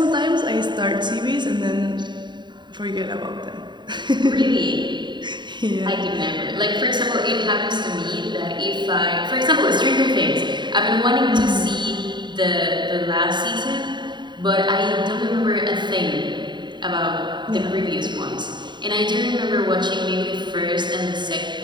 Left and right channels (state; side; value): late; left; 0.22 ms